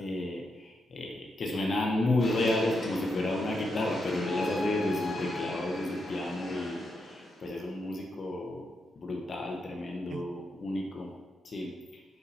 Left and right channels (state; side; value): normal; both; correlation 0.83